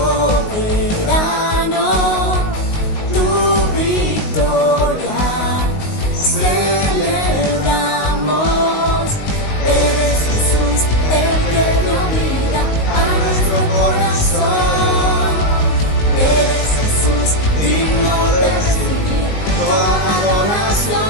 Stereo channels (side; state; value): right; late; 19 ms